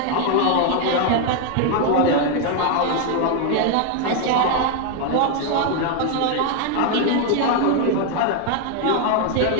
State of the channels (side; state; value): both; different; correlation 0.01